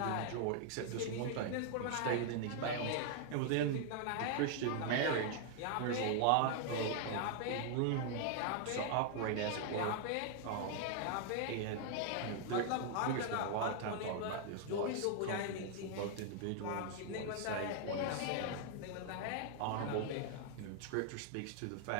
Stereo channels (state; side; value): different; both; correlation 0.00